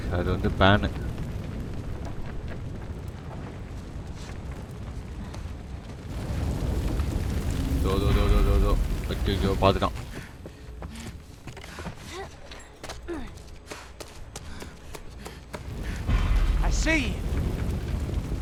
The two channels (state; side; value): identical; both; correlation 1.00